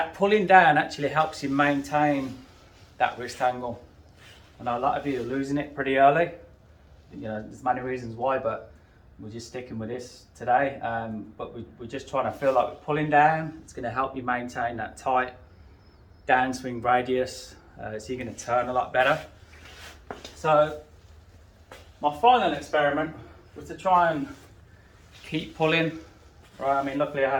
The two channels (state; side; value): identical; both; correlation 1.00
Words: pulling down actually helps you maintain that wrist angle. I know a lot of you are losing it pretty early. You know, there's many reasons why, but we're just sticking with this today. But we're just trying to feel like we're pulling down. It's going to help you maintain that tight downswing radius, so you're going to turn a lot better. So my final experiment was to try and keep pulling. Right, I mean, luckily I